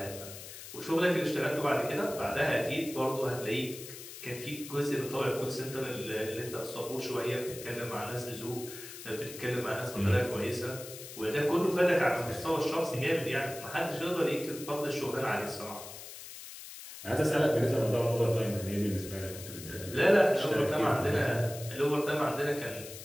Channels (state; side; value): noise; left; hiss, 13 dB below the sound